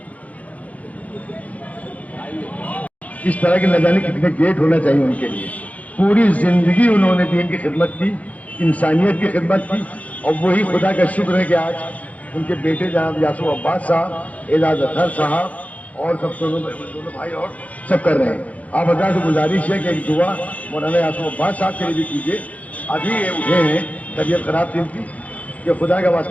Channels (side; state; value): right; late; 0.070 ms